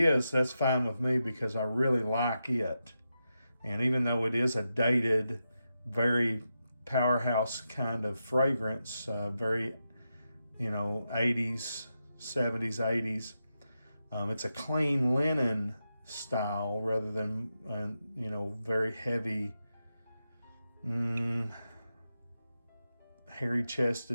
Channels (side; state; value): both; inverted; correlation -0.88